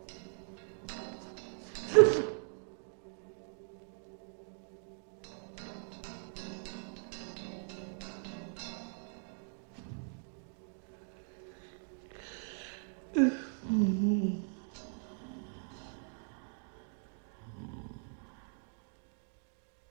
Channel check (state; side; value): silent; left; 52 dB below the other